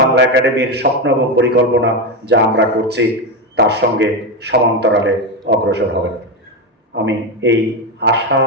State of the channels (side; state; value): both; normal; correlation 0.12